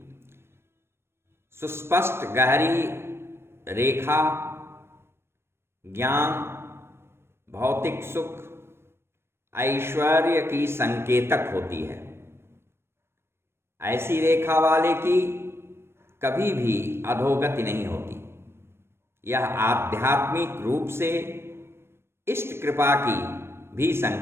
सुस्पष्ट गहरी रेखा ज्ञान, भौतिक सुख, ऐश्वर्य की संकेतक होती है। ऐसी रेखा वाले की कभी भी अधोगति नहीं होती। यह आध्यात्मिक रूप से इष्ट कृपा की भी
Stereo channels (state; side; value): late; left; 0.12 ms